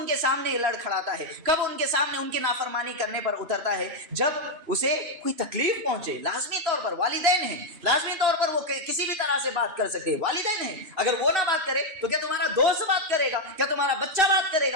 کے سامنے لڑ کھڑاتا ہے؟ کب ان کے سامنے ان کی نافرمانی کرنے پر اترتا ہے؟ جب اسے کوئی تکلیف پہنچے۔ لازمی طور پر والدین ہیں، لازمی طور پر وہ کسی بھی طرح سے بات کر سکتے ہیں، والدین ہیں، اگر وہ نہ بات کرے تو کیا تمہارا دوست بات کرے گا؟ کیا تمہارا بچہ بات کرے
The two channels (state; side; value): late; left; 3.0 ms